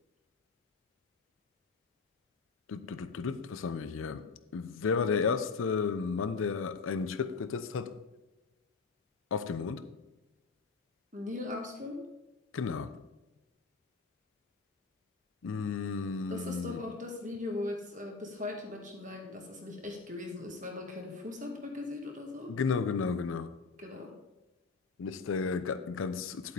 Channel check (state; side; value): quieter; right; 4.6 dB